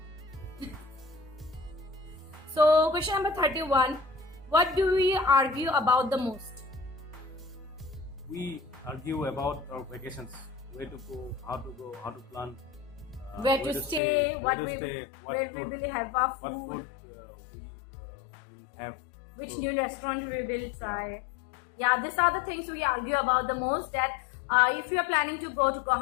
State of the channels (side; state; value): right; drops out; at 14.0 s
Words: So question number 31. What do we argue about the most? We argue about our vacations, where to go, how to plan, Where to stay, where we will have our what food, food we have. which So, new restaurant we will try. Yeah, these are the things we argue about the most. That if we are planning to go to